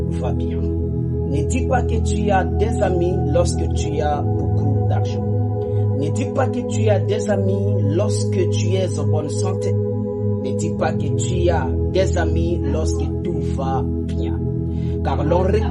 va bien. Ne dis pas que tu as des amis lorsque tu as beaucoup d'argent. Ne dis pas que tu as des amis lorsque tu es en bonne santé. Ne dis pas que tu as des amis lorsque tout va bien. Car l'on ne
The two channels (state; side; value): identical; both; correlation 1.00